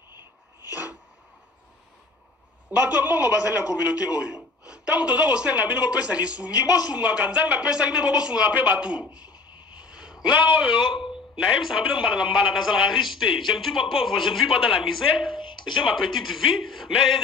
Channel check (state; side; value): quieter; right; 4.0 dB